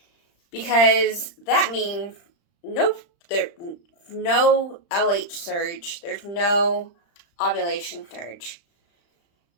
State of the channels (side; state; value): right; late; 35 ms